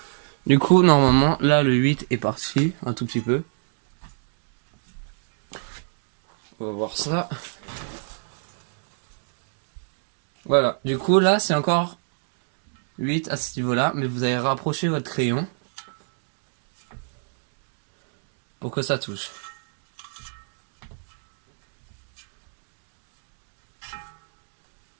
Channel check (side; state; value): left; silent; digital silence